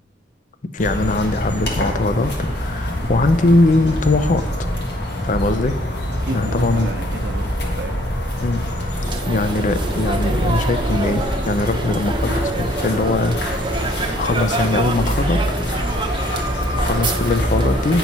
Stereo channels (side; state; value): both; normal; correlation 0.63